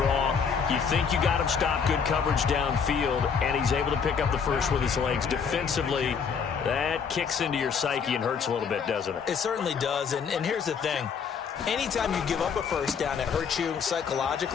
You think you got him stopped, good coverage downfield, and he's able to pick up the 1st with his legs. Defensively, that kicks into your psyche and hurts a little bit, doesn't it? It certainly does, and here's the thing. Anytime you give up a 1st down, it hurts you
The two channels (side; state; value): right; quieter; 6.4 dB